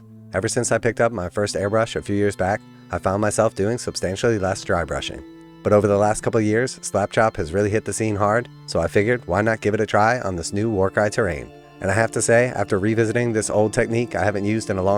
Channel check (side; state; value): both; identical; correlation 1.00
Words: Ever since I picked up my first airbrush a few years back, I found myself doing substantially less dry brushing. But over the last couple of years, Slapchop has really hit the scene hard, so I figured why not give it a try on this new Warcry terrain. And I have to say, after revisiting this old technique I haven't used in a